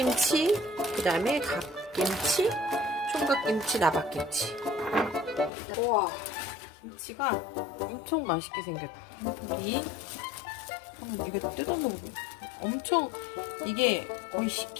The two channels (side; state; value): right; drops out; at 5.5 s